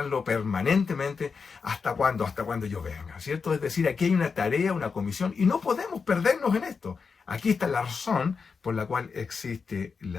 permanentemente. ¿Hasta cuándo? Hasta cuando yo venga, ¿cierto? Es decir, aquí hay una tarea, una comisión, y no podemos perdernos en esto. Aquí está la razón por la cual existe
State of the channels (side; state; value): right; quieter; 5.3 dB